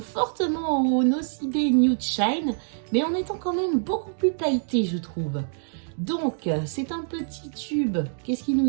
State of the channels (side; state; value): left; silent; digital silence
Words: fortement au Nocibé Nude Shine, mais en étant quand même beaucoup plus pailleté, je trouve. Donc, c'est un petit tube. Qu'est-ce qu'ils nous